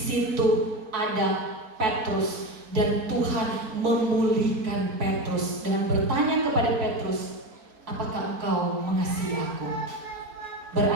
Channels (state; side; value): late; left; 4.5 ms